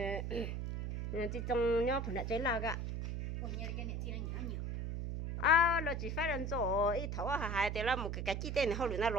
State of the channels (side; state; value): right; noise; hum, 3 dB below the sound